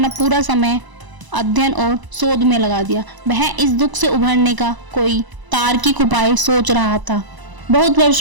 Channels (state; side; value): late; left; 1.0 ms